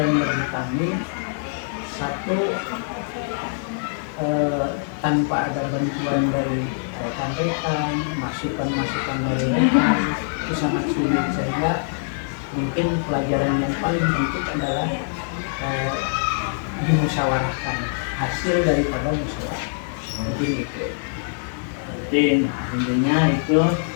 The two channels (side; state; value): right; silent; digital silence